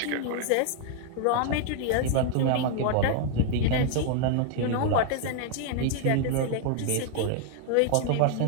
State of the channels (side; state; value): both; different; correlation 0.00